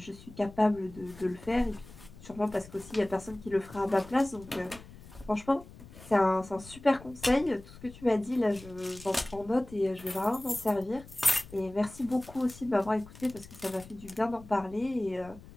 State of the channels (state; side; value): noise; left; rumble, 19 dB below the sound